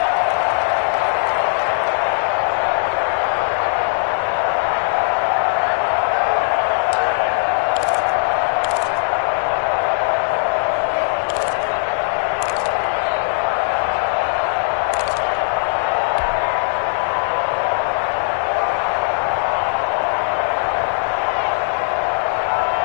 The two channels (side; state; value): right; silent; 66 dB below the other